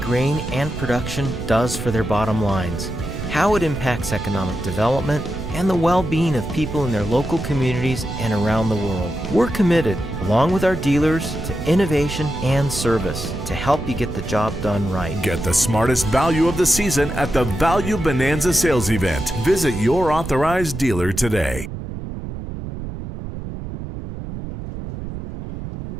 and production does for their bottom lines, how it impacts economic development, and the well-being of people in their local communities and around the world. We're committed, along with our dealers, to innovation and service to help you get the job done right. Get the smartest value of the season at the Value Bonanza sales event. Visit your authorized dealer today.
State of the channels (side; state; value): right; noise; rumble, 8 dB below the sound